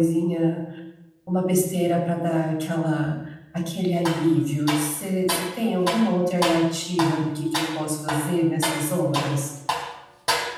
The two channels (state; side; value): identical; both; correlation 1.00